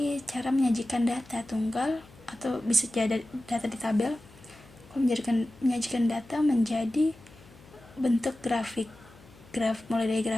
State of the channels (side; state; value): left; noise; hum, 23 dB below the sound